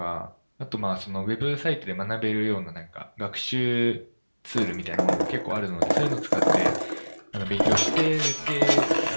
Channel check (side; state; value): both; inverted; correlation -1.00